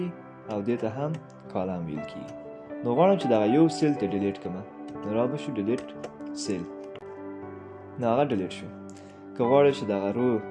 او دې ته هم کالم ویل کېږي. نو غواړم چې دغه یو سیل ته ډیلیټ کړم، نو را به شو ډیلیټ سیل، نو هغه ډیلیټ شو. که غواړئ چې دغه رو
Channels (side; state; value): both; identical; correlation 1.00